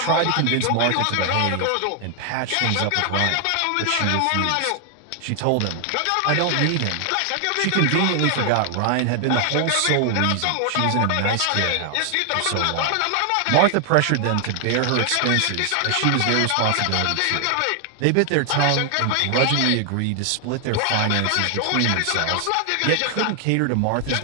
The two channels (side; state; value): both; different; correlation 0.00